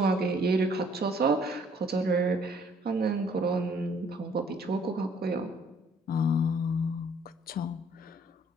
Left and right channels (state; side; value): normal; both; correlation 0.61